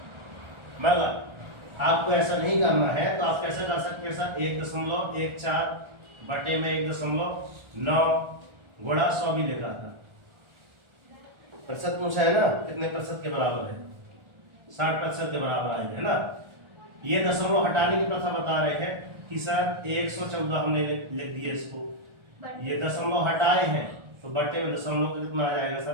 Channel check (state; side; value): late; left; 1.4 ms